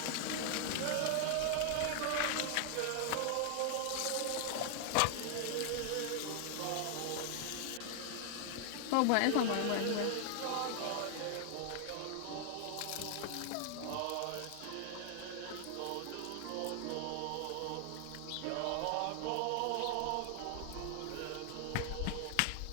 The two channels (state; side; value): different; both; correlation 0.00